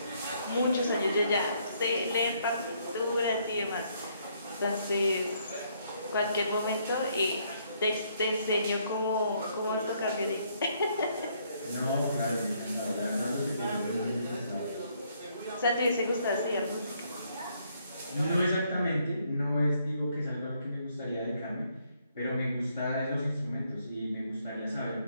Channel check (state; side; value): inverted; both; correlation -0.70